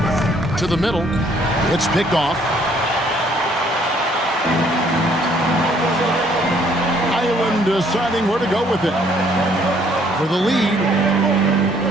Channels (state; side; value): normal; both; correlation 0.64